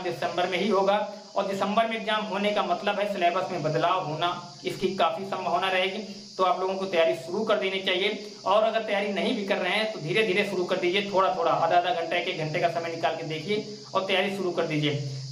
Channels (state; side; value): identical; both; correlation 1.00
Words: दिसंबर में ही होगा। और दिसंबर में एग्जाम होने का मतलब है सिलेबस में बदलाव होना, इसकी काफी संभावना रहेगी। तो आप लोगों को तैयारी शुरू कर देनी चाहिए। और अगर तैयारी नहीं भी कर रहे हैं तो धीरे धीरे शुरू कर दीजिए, थोड़ा थोड़ा, आधा घंटा, 1 घंटे का समय निकाल के देखिए और तैयारी शुरू कर दीजिए।